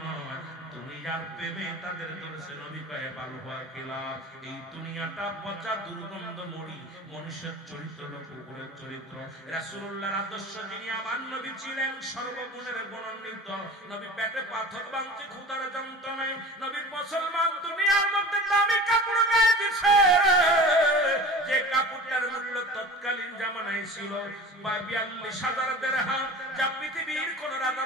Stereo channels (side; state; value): both; normal; correlation 0.38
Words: নয়, দুনিয়ার প্রেমে তাদের ধরেছে। নবী কয়ে ভালো হওয়ার কি লাভ? এই দুনিয়াটা পচা দুর্গন্ধ মরি, মনুষ্যের চরিত্র কুকুরের চরিত্র। রাসূলুল্লাহর আদর্শ যিনি আমার নবী ছিলেন সর্বগুণের গুণান্বিত, নবী পেটে পাথর বাঁধছে ক্ষুধার যন্ত্রণায়, নবী মুসলমান দুনিয়ার মধ্যে দামি কাপড় গায়ে দিছে, যে কাপড়টার মূল্য তৎকালীন জামানায় ছিল 42,000 দিরহাম, যা পৃথিবীর কোন রাজা